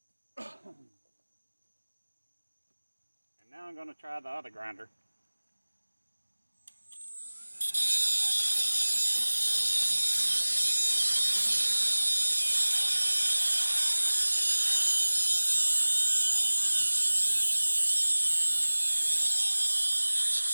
And now I'm going to try the other grinder.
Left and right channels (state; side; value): inverted; both; correlation -1.00